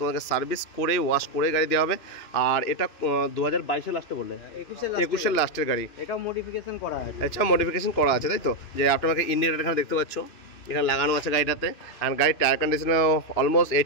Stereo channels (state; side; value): late; right; 2.9 ms